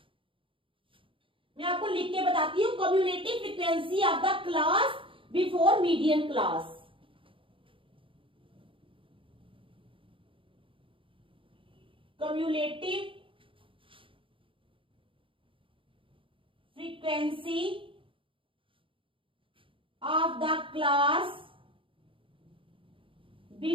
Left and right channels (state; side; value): late; left; 0.25 ms